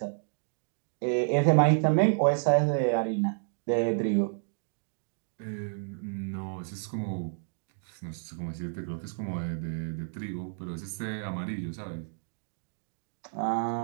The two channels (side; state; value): left; silent; digital silence